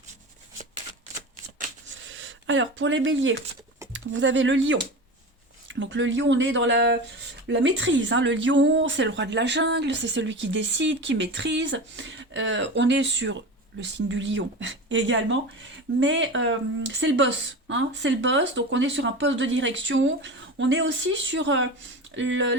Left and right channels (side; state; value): both; normal; correlation 0.28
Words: Alors, pour les béliers, vous avez le lion. Donc le lion, on est dans la maîtrise, hein. Le lion, c'est le roi de la jungle, c'est celui qui décide, qui maîtrise. On est sur le signe du lion également, mais c'est le boss, hein. C'est le boss, donc on est sur un poste de direction. On est aussi sur